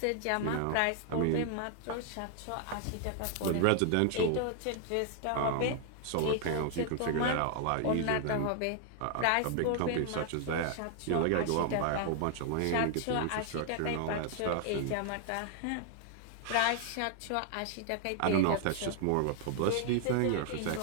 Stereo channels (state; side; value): different; both; correlation 0.00